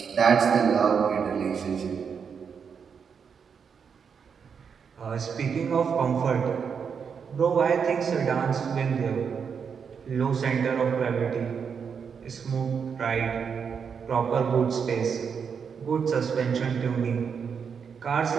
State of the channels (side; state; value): left; quieter; 6.6 dB